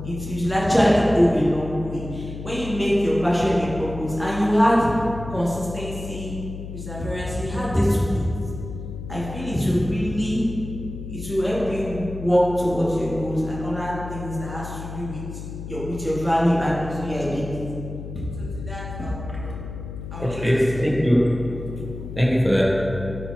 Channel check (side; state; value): left; noise; hum, 9 dB below the sound